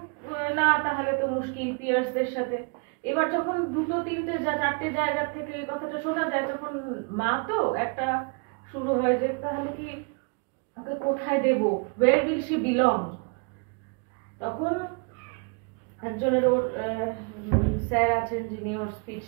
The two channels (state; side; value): quieter; left; 36.0 dB